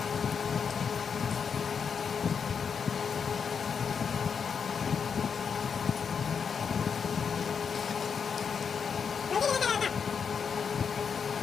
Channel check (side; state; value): right; quieter; 6.4 dB